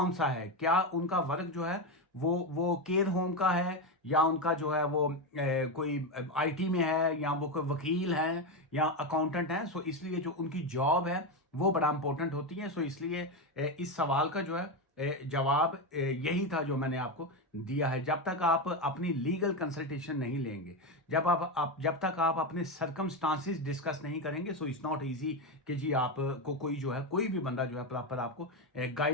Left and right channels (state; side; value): normal; both; correlation 0.12